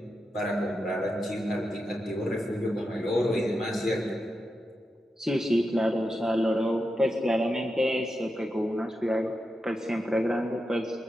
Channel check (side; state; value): both; normal; correlation 0.88